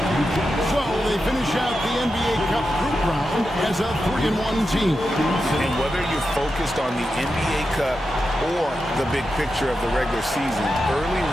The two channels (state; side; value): normal; both; correlation 0.89